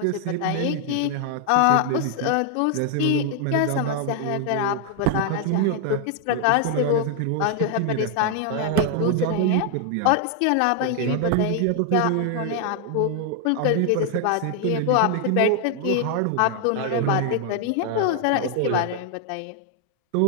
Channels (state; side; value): different; both; correlation 0.00